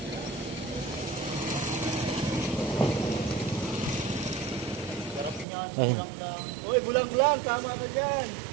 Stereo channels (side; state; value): left; drops out; at 5.5 s